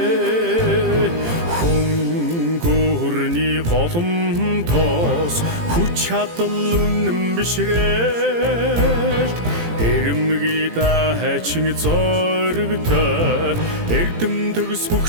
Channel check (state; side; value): late; left; 18 ms